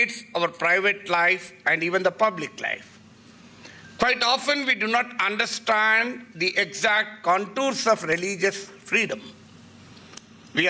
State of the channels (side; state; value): both; identical; correlation 1.00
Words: our private life and even the public life. Quite often we do not understand the exact contours of religious freedom. We